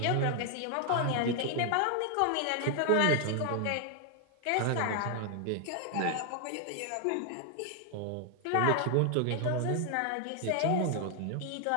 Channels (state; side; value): different; both; correlation 0.00